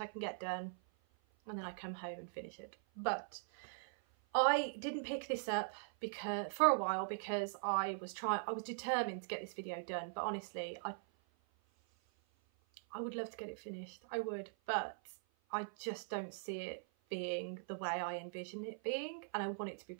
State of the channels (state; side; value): silent; left; 50 dB below the other